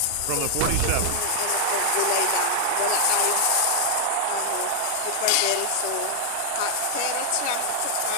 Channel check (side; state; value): both; different; correlation 0.00